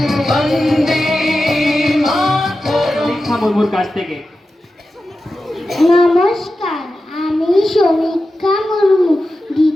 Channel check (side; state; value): both; normal; correlation 0.92